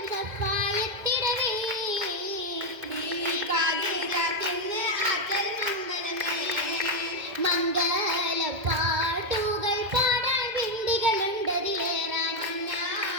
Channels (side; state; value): left; late; 2.1 ms